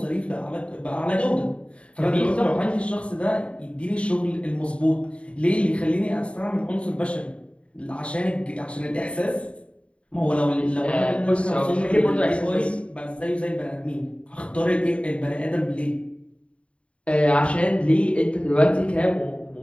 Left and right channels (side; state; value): right; late; 0.060 ms